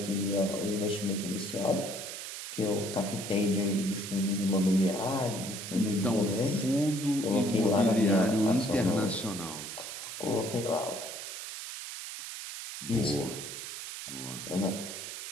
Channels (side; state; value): right; noise; hiss, 8 dB below the sound